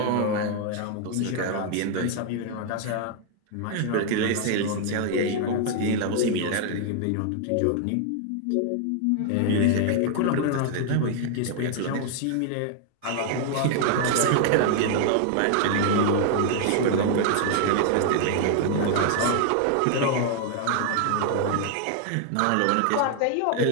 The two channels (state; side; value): different; both; correlation 0.00